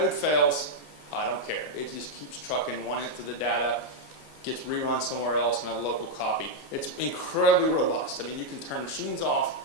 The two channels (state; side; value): late; right; 14 ms